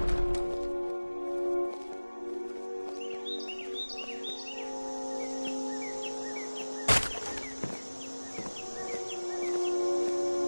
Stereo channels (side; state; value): both; inverted; correlation -1.00